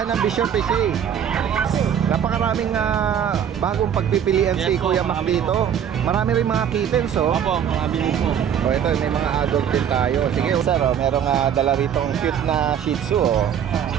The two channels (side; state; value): left; quieter; 8.7 dB